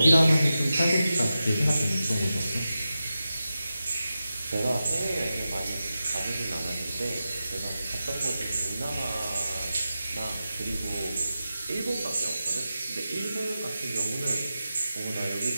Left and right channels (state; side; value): inverted; both; correlation -0.92